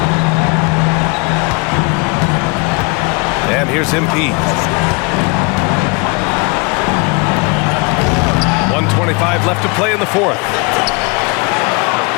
And here's MP. 1:25 left to play in the fourth.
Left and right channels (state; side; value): quieter; right; 29.6 dB